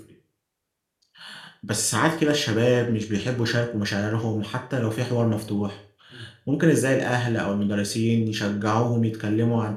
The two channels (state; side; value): identical; both; correlation 1.00